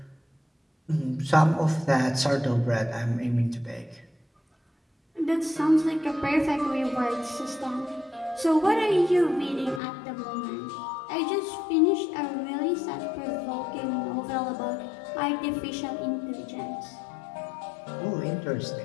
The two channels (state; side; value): drops out; right; at 9.8 s